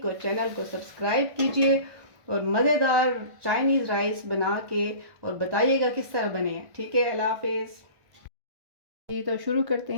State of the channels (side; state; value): left; late; 1.5 ms